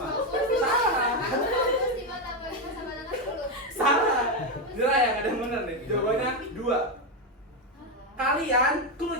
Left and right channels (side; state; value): both; normal; correlation 0.08